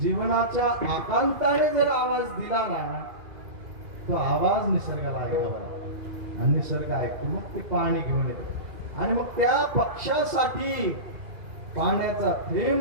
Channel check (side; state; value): left; late; 2.5 ms